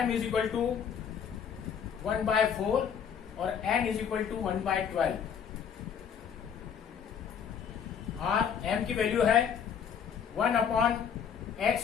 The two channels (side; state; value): right; quieter; 7.6 dB